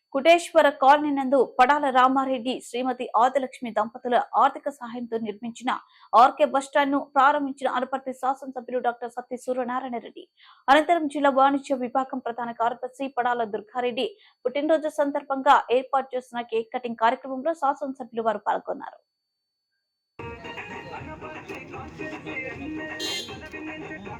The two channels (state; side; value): identical; both; correlation 1.00